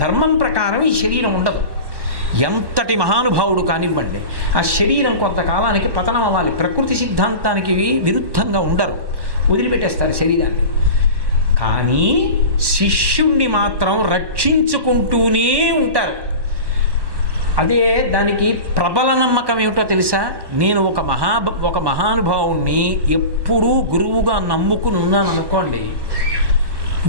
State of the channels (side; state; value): left; late; 1.1 ms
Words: ధర్మం ప్రకారం ఈ శరీరం ఉండదు. ఎంతటి మహానుభావుడు కానివ్వండి, ఆ శరీరం కొంతకాలానికి పతనం అవ్వాలి. ప్రకృతి సిద్ధాంతానికి విరుద్ధంగా ఉండరు, వదిలిపెట్టేస్తారు శరీరాన్ని. కానీ శిష్యుణ్ణి మాత్రం రక్షించుకుంటూనే ఉంటారు. అదే దానికి ప్రబల నమ్మకం ఏమిటో తెలుసా? నేను ఒక మహానుభావుణ్ణి ఎప్పుడూ గురువుగా నమ్ముకుని ఉన్నాను అనుకోండి,